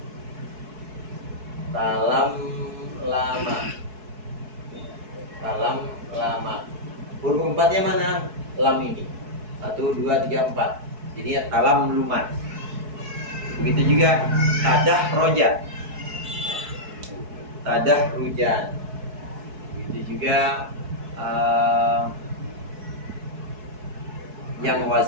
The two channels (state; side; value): late; left; 4.6 ms